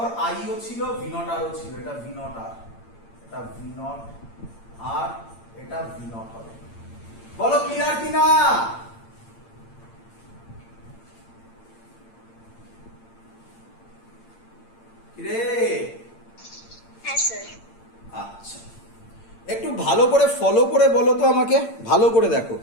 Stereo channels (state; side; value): late; right; 8.8 ms